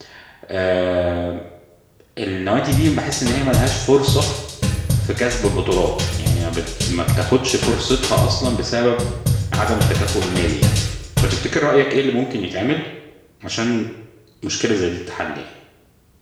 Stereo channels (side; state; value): both; identical; correlation 1.00